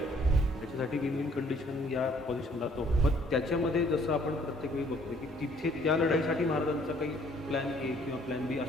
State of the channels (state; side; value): normal; both; correlation 0.61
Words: त्याच्यासाठी विन विन कंडिशन या पोझिशनला तो. पण त्याच्यामध्ये जसं आपण प्रत्येक वेळी बघतो की तिथे त्या लढाईसाठी महाराजांचा काही प्लॅन ए किंवा प्लॅन बी